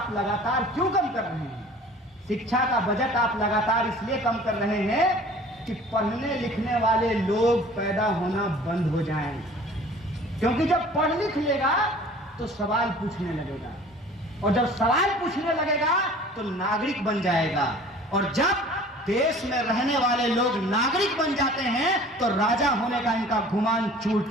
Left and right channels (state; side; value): normal; both; correlation 0.47